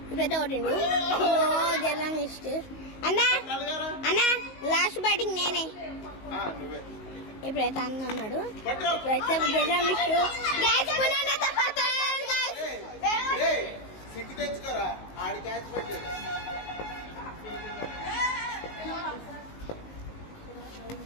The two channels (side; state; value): right; late; 19 ms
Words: ఇప్పుడైతే కొట్టిండు. జర్రం ఇష్ట అన్న అన్న లాస్ట్ బ్యాటింగ్ నేనే. ఇప్పుడైతే అన్న అన్నాడు. ఇప్పుడైతే జర్రం ఇష్ట క్యాచ్